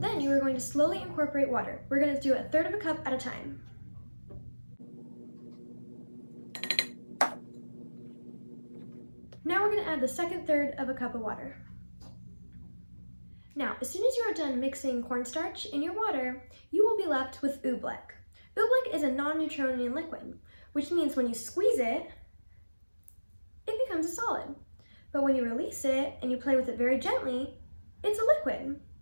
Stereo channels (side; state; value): both; inverted; correlation -1.00